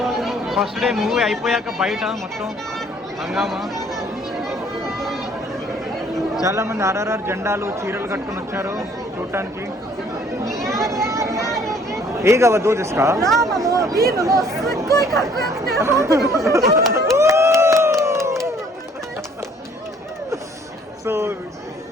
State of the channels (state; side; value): normal; both; correlation 0.59